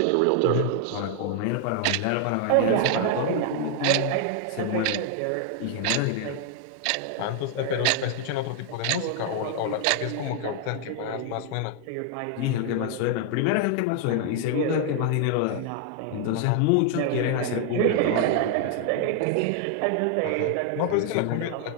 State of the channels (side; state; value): both; different; correlation 0.00